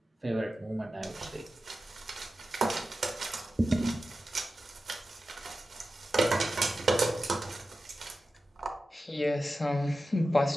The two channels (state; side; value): normal; both; correlation 0.93